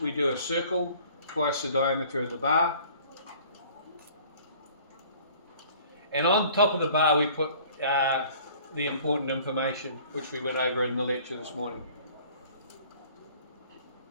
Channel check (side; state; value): both; inverted; correlation -0.51